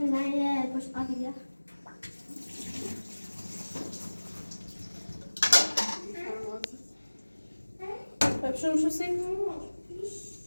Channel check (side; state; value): both; inverted; correlation -1.00